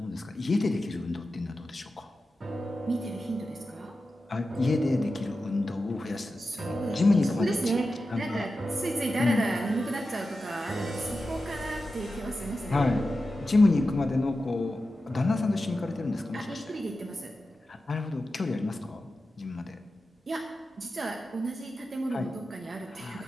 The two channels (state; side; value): normal; both; correlation 0.92